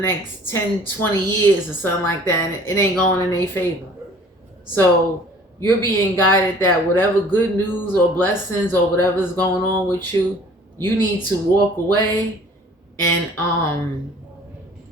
10, 20 years or something like that, and it ain't going in their favor. So you're being guided that whatever good news or blessings or whatever's going on with you, you need to walk away and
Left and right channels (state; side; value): normal; both; correlation 0.51